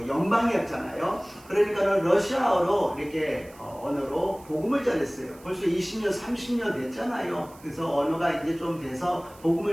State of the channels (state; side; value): noise; right; hiss, 24 dB below the sound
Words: 연방이었잖아요. 그러니까 러시아어로 이렇게 언어로 복음을 전했어요. 벌써 20년, 30년 됐잖아요. 그래서 언어가 이제 좀 돼서